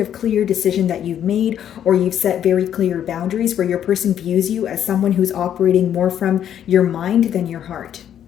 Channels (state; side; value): quieter; right; 9.9 dB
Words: of clear decision that you've made, or you've set very clear boundaries where your person views you as someone who's operating more from your mind than your heart.